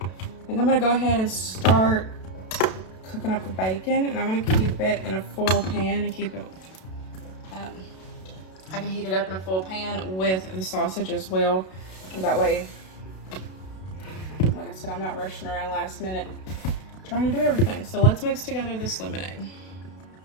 I think I'm gonna go ahead and start cooking up the bacon, and I'm gonna keep it in a full pan and keep it, I can heat it up in a full pan with the sausage as well. And that way, like I said, I'm not rushing around last minute trying to do everything. So let's mix together this lemonade.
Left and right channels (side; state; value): right; late; 32 ms